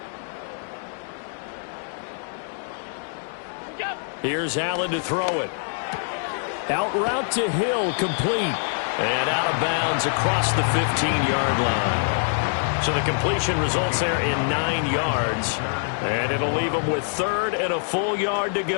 Here's Allen to throw it. Out route to Hill, complete. And out of bounds across the 15-yard line. So the completion results there in 9 yards. And it'll leave them with 3rd and a full yard to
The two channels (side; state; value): right; silent; digital silence